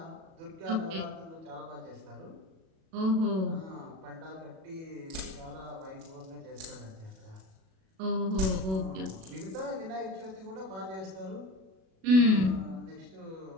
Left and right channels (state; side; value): late; left; 37 ms